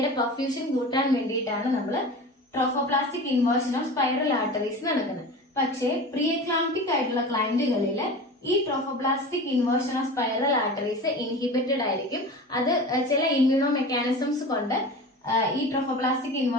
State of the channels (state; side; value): normal; both; correlation 0.33